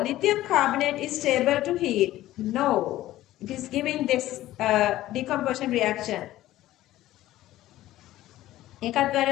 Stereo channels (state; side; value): quieter; right; 15.0 dB